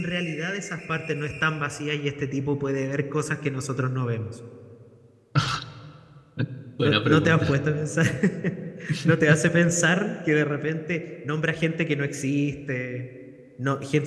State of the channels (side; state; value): both; identical; correlation 1.00